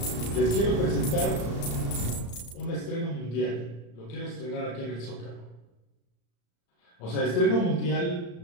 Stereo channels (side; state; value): right; late; 35 ms